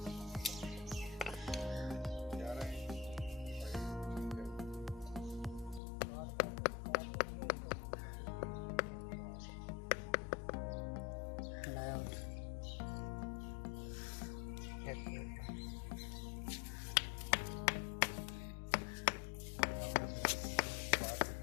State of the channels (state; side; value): drops out; right; at 5.8 s